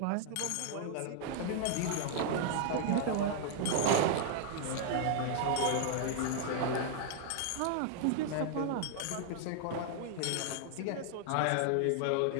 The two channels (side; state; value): both; different; correlation 0.00